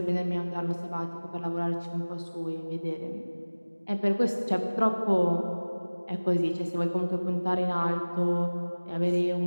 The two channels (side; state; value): both; inverted; correlation -1.00